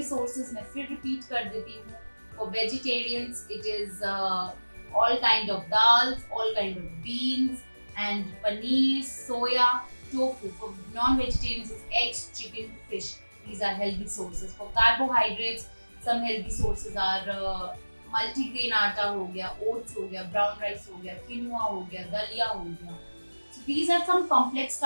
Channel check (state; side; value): inverted; both; correlation -1.00